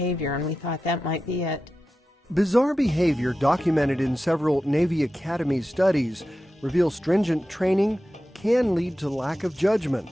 and we thought that might be it. Bizarre behavior documented in several Navy Academy studies reveals stringent training can lead to lack of judgment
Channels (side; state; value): both; normal; correlation 0.92